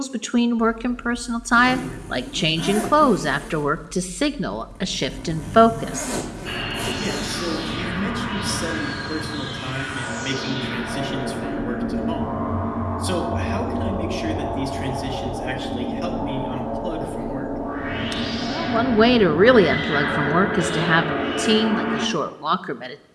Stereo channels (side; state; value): both; identical; correlation 1.00